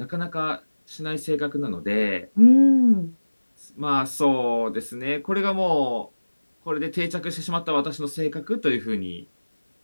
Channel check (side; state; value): both; inverted; correlation -1.00